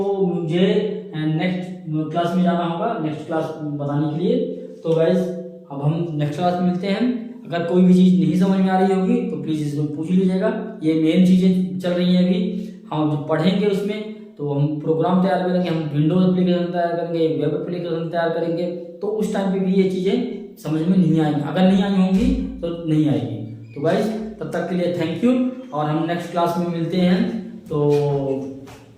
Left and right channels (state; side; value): identical; both; correlation 1.00